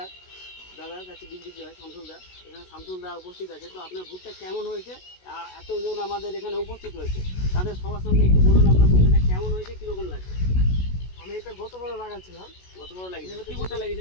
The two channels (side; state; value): right; late; 16 ms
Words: দাদার কাছে বিক্রি হয় শামসুলদা, এখানে শামসুলদা উপস্থিত আছে। তো আপনার ভুট্টা কেমন হয়েছে, এতজন আমাদের এখানে উপস্থিত হয়েছে, তাদের সবার সামনে একটু বলুন আপনার ভুট্টাটা কেমন হয়েছে, কীরকম লাগছে? আমি এটা গতবার লাগাচ্ছিলাম। গতবার লাগিয়েছিলেন? কি ভুট্টা